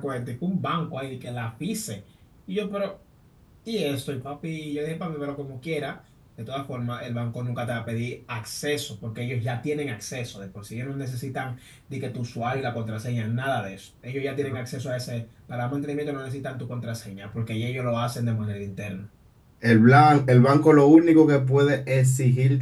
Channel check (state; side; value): identical; both; correlation 1.00